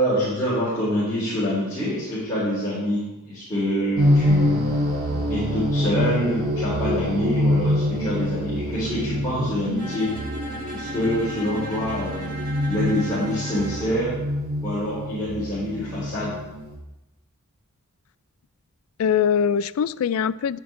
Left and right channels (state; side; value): normal; both; correlation 0.49